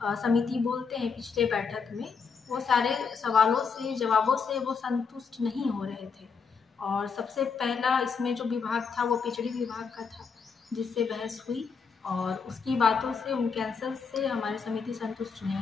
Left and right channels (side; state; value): right; quieter; 5.6 dB